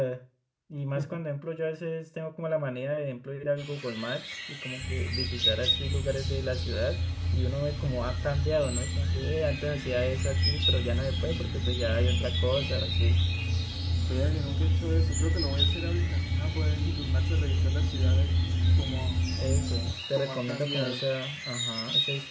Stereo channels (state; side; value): identical; both; correlation 1.00